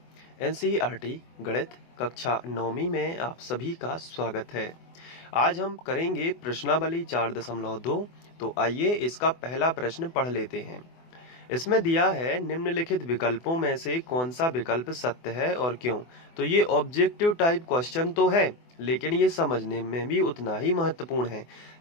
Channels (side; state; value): right; late; 24 ms